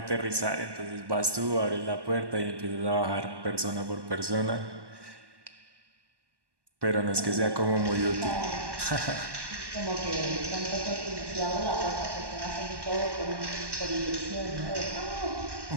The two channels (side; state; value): left; late; 1.1 ms